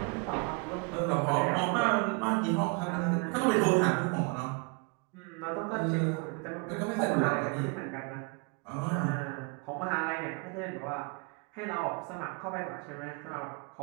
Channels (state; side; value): quieter; left; 32.5 dB